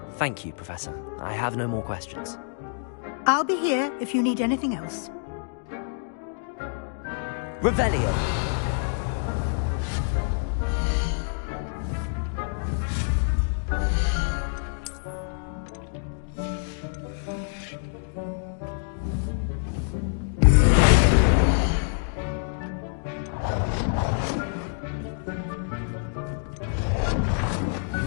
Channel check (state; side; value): silent; right; digital silence